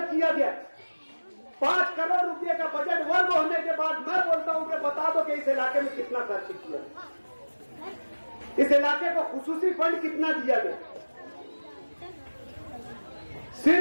किया गया। 5 करोड़ रुपए का बजट वर्ग होने के बाद मैं बोलता हूं कि बता दो कि इस इलाके में कितना खर्च किया, इस इलाके को खुसूसी फंड कितना दिया गया।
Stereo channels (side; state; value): both; inverted; correlation -1.00